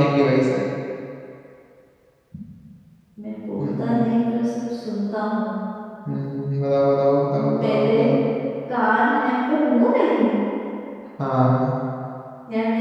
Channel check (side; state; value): both; identical; correlation 1.00